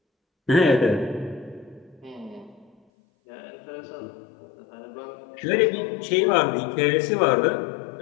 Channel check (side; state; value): right; drops out; at 2.8 s